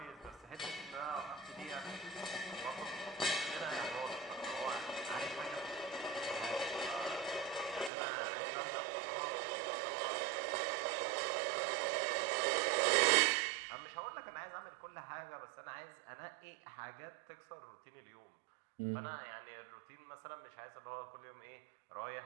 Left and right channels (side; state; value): left; drops out; at 7.9 s